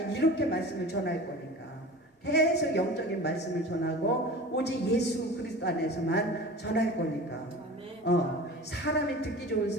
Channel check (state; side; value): normal; both; correlation 0.36